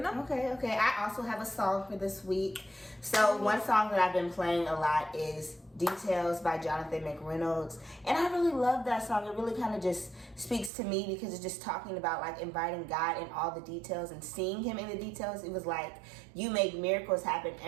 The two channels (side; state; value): left; drops out; at 10.7 s